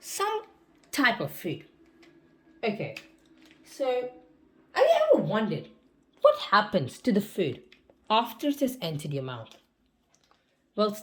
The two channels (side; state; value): both; identical; correlation 1.00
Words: some type of food. Okay, so have you ever wondered what happens to the food after it has entered your mouth? Well,